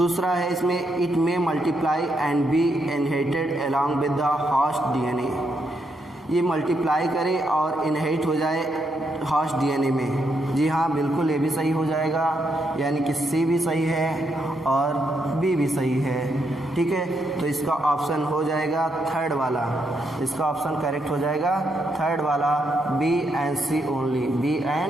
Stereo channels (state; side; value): normal; both; correlation 0.79